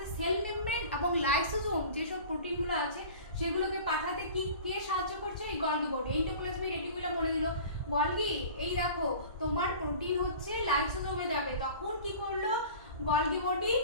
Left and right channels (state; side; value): inverted; both; correlation -0.41